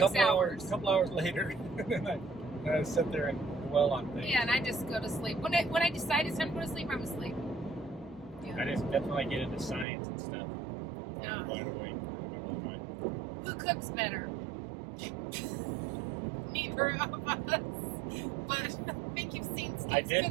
hours. A couple hours later, and then I sit there and dwell on things. Yeah, and I just go to sleep. When I decide it's time to go to sleep, I'm asleep. Yeah. That's when I get into science and stuff. Yeah. Wide awake. Who cooks better? Neither of us. But I think you've seen Steve's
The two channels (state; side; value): drops out; left; at 9.9 s